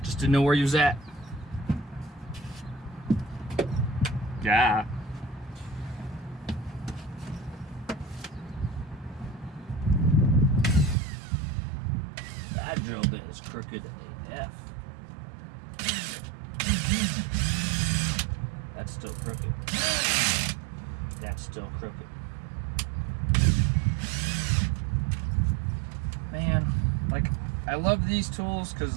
Just didn't know where you was at. Yeah. That drill bit is crooked AF. That's still crooked. That's still crooked. Man, like, I love these tools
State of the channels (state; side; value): drops out; left; at 11.0 s